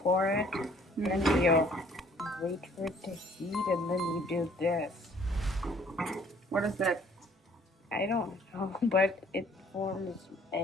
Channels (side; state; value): both; normal; correlation 0.58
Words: pour it, then you wait for it to heat, and then you do this. What is that? I don't know, but it forms